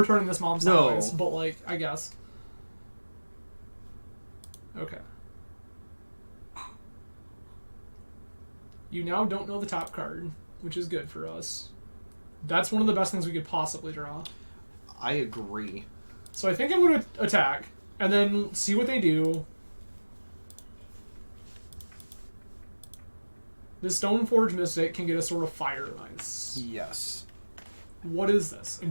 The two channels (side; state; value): both; inverted; correlation -1.00